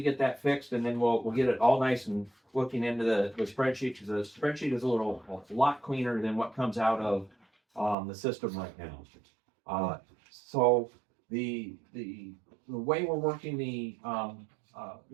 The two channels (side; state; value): left; drops out; at 8.0 s